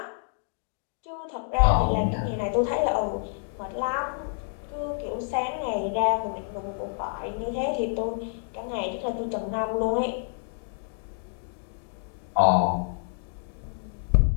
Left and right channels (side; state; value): right; silent; digital silence